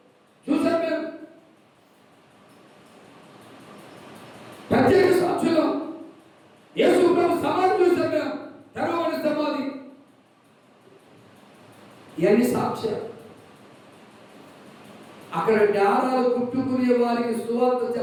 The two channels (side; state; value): both; identical; correlation 1.00